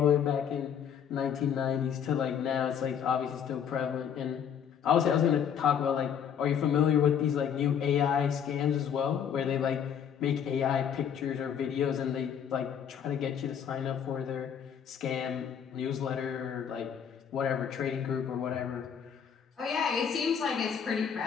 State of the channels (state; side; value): quieter; right; 8.1 dB